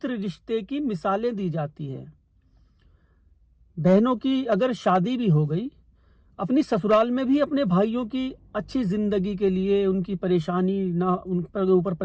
रिश्ते की मिसालें दी जाती है। बहनों की अगर शादी भी हो गई, अपनी ससुराल में भी अपने भाइयों की अच्छी जिंदगी के लिए, उनकी परेशानी ना, उन पर ऊपर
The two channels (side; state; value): both; identical; correlation 1.00